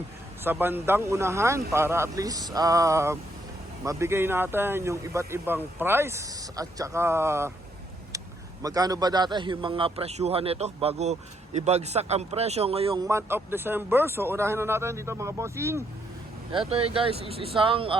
sa bandang unahan para at least mabigay natin yung iba't ibang price at saka magkano ba dati yung mga presyuhan nito bago ibagsak ang presyo ngayong month of December. So unahin na natin dito mga bossing. Ito guys is isang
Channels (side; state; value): both; normal; correlation 0.74